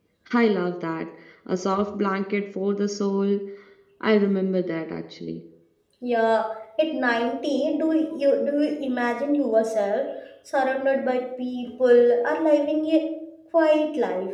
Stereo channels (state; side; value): identical; both; correlation 1.00